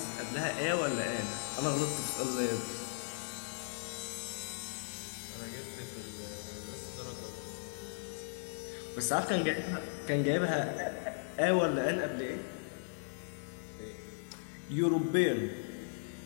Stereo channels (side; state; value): right; silent; digital silence